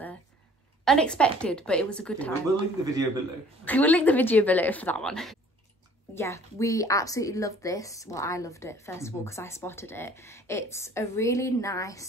unexpected, but it was a good time. We'll link the video below. We will link the video below for that one. Yeah, we absolutely loved this. Well, I loved it first of all because I spotted it. It's a really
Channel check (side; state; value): both; normal; correlation 0.54